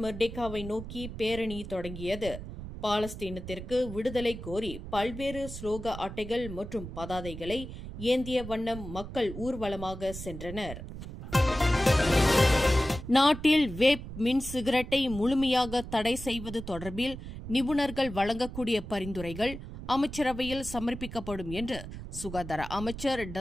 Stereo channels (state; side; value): noise; right; rumble, 10 dB below the sound